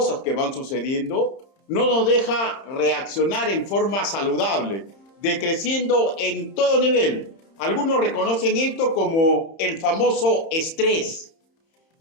que van sucediendo, no nos deja reaccionar en forma saludable, decreciendo en todo nivel. Algunos reconocen esto como el famoso estrés.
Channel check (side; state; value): right; late; 30 ms